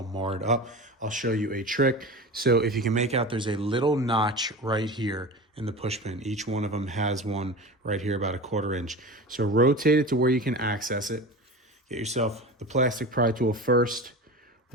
marred up, I'll show you a trick. So if you can make out, there's a little notch right here in the push pin. Each one of them has one right here, about 1/4 inch. So rotate it to where you can access it. Get yourself the plastic pry tool first.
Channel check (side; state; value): both; normal; correlation 0.30